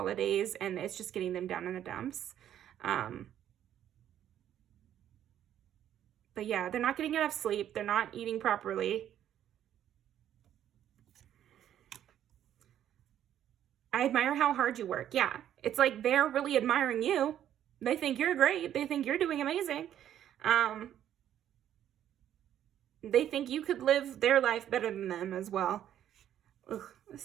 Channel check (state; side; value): quieter; left; 10.8 dB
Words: and it's just getting them down in the dumps. But yeah, they're not getting enough sleep. They're not eating properly. I admire how hard you work. Yeah, it's like they're really admiring you. They think you're great. They think you're doing amazing. They think you could live their life better than them as well. Ugh,